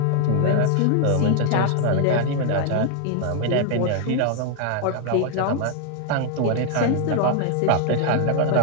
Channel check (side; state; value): both; different; correlation 0.00